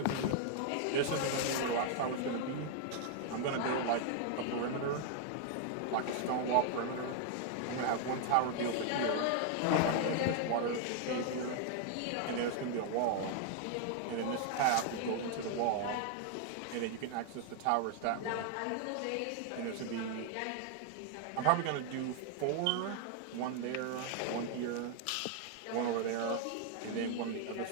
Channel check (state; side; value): different; both; correlation 0.00